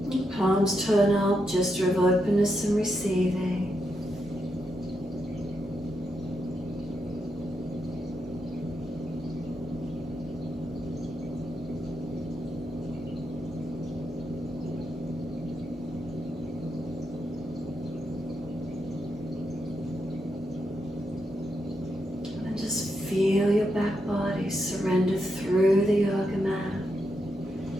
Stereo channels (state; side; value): normal; both; correlation 0.83